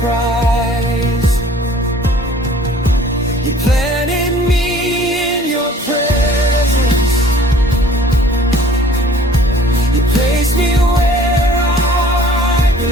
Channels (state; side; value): normal; both; correlation 0.52